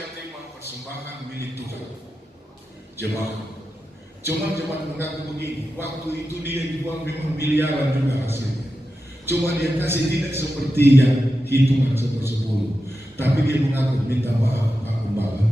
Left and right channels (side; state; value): both; normal; correlation 0.91